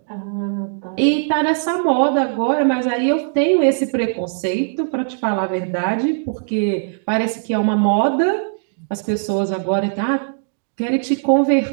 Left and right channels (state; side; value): silent; left; digital silence